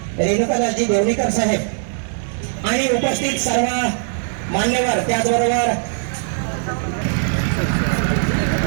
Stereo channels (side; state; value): left; silent; 61 dB below the other